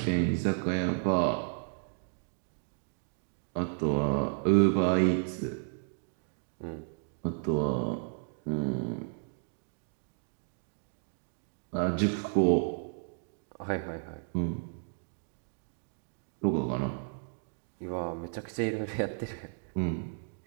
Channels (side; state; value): left; silent; 56 dB below the other